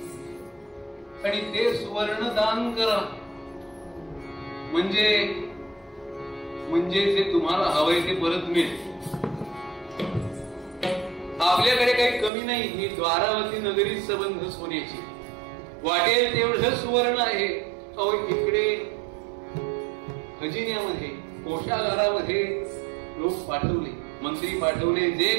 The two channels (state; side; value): drops out; left; at 12.3 s